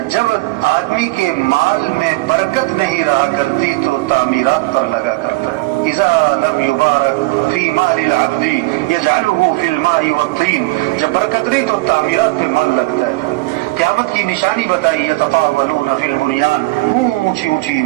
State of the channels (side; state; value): left; quieter; 21.9 dB